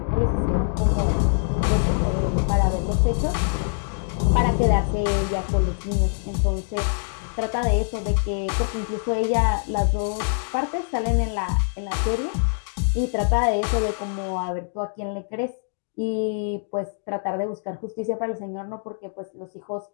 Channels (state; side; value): silent; right; digital silence